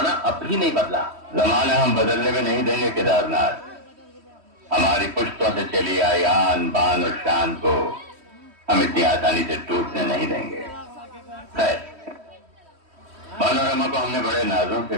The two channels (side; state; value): left; late; 3.1 ms